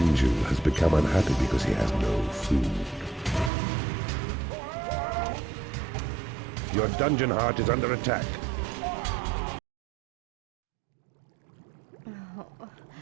has become unhappy because he has no food. Your dungeon heart is under attack.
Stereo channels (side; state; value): left; drops out; at 3.5 s